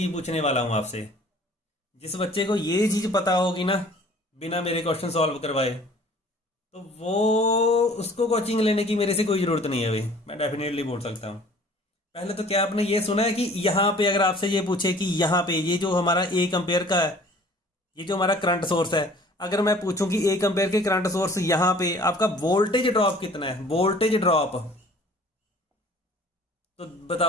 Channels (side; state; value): both; normal; correlation 0.51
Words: पूछने वाला हूँ आपसे। जिस बच्चे को ये चीज़ पता होगी ना बिना मेरे क्वेश्चन सॉल्व करवाए, तो वो उसको कोचिंग लेने की मेरे से कोई ज़रूरत नहीं है भाई, मैं डेफिनेटली बोल सकता हूँ। पहले तो क्या आपने ये सुना है कि यहाँ पे अगर आपसे ये पूछे कि यहाँ पे ये जो हमारा 1 एम्पेयर का है, ये जो हमारा करंट सोर्स है, अगर मैं पूछूं कि 1 एम्पेयर के करंट सोर्स यहाँ पे आपका वोल्टेज ड्रॉप कितना है, वोल्टेज ड्रॉप, तो